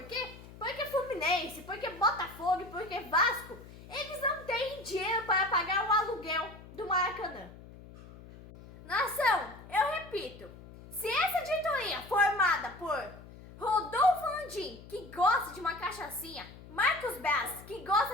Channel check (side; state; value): left; noise; hum, 18 dB below the sound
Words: quê? Porque Fluminense, porque Botafogo, porque Vasco, eles não têm dinheiro para pagar o aluguel do Maracanã. Nação, eu repito, se essa diretoria formada por Rodolfo Landim, que gosta de uma cachaçinha, Marcos Braz, que